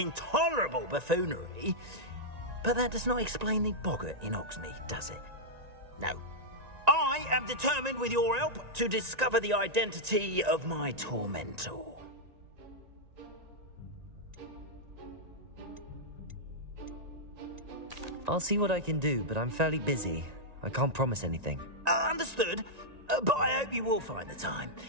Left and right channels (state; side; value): late; left; 1.9 ms